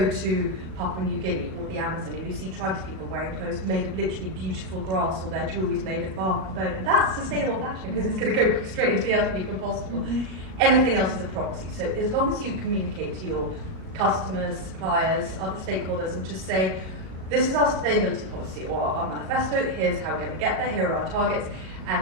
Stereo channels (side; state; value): left; late; 38 ms